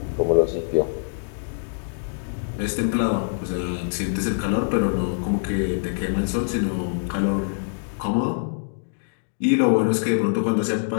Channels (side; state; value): right; silent; digital silence